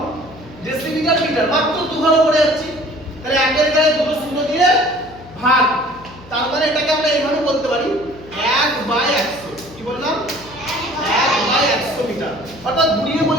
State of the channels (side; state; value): left; noise; hum, 20 dB below the sound